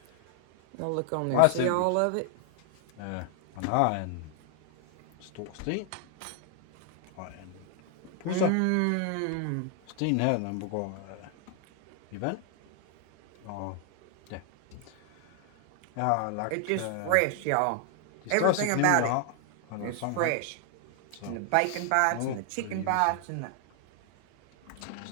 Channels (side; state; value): both; different; correlation 0.00